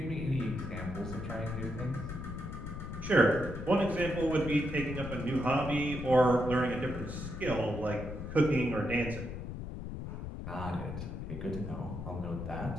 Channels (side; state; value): left; noise; rumble, 7 dB below the sound